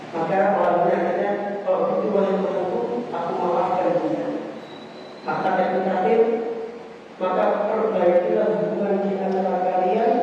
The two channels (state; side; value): identical; both; correlation 1.00